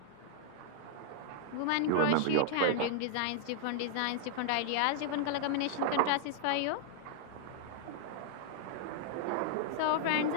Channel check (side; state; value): both; different; correlation -0.01